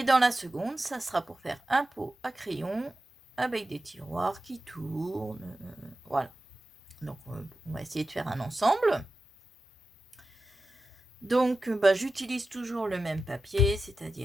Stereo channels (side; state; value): both; normal; correlation 0.92